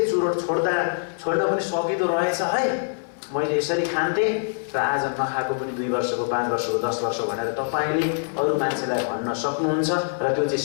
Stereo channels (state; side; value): silent; right; digital silence